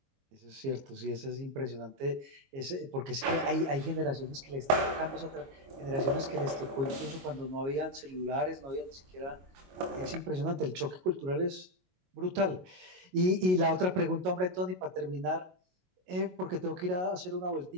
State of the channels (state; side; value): late; left; 22 ms